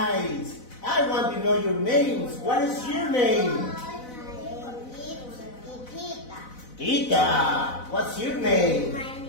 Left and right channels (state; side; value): late; right; 4.0 ms